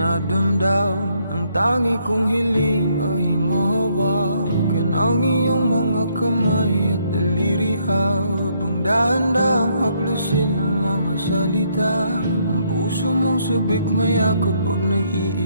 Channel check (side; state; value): both; inverted; correlation -0.71